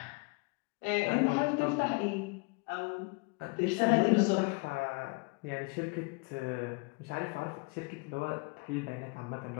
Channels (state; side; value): quieter; right; 30.3 dB